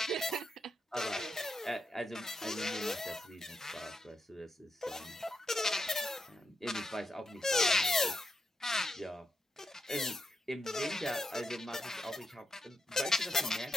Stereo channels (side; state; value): both; normal; correlation 0.83